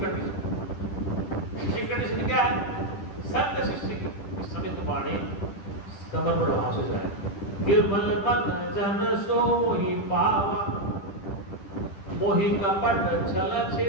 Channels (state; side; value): late; right; 10 ms